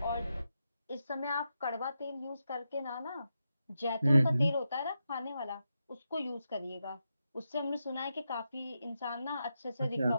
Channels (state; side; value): inverted; both; correlation -0.86